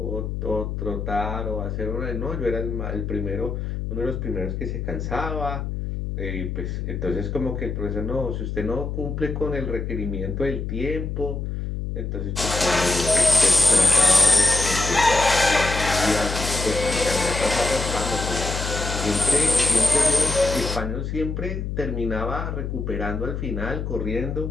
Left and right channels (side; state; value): left; noise; hum, 4 dB below the sound